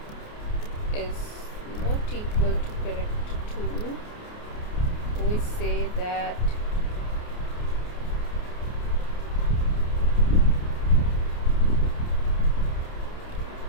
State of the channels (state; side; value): late; right; 28 ms